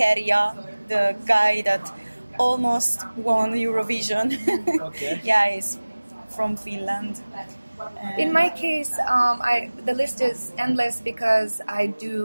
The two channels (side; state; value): both; inverted; correlation -1.00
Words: the guy that almost won Eurovision. Okay. Yeah, he's from Finland. In my case, the list is endless because I